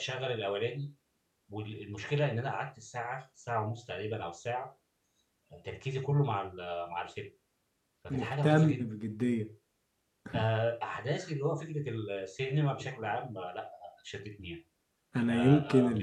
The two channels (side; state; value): both; identical; correlation 1.00